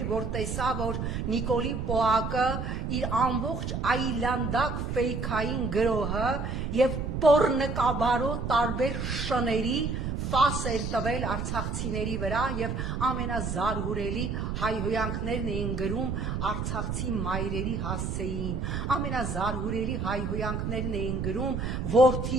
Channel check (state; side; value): noise; right; rumble, 2 dB below the sound